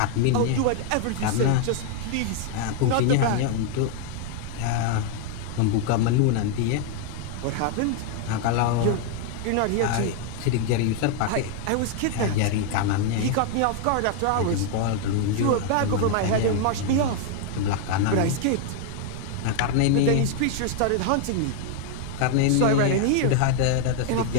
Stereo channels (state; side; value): different; both; correlation 0.00